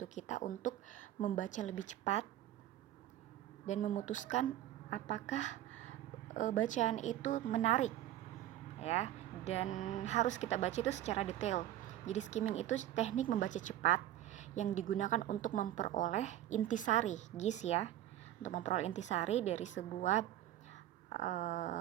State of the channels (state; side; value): quieter; left; 13.0 dB